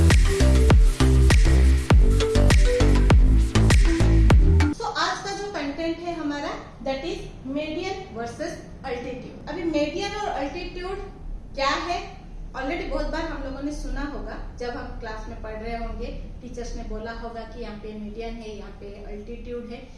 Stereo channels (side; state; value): both; identical; correlation 1.00